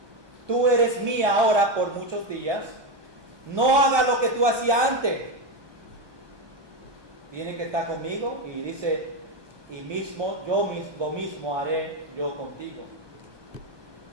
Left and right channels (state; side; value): late; left; 1.2 ms